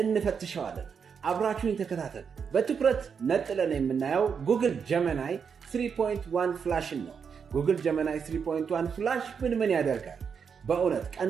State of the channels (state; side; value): quieter; left; 6.5 dB